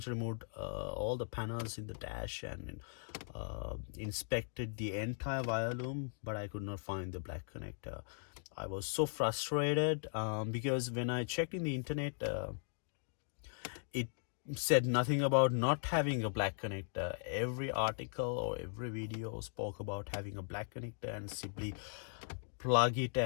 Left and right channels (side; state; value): right; silent; digital silence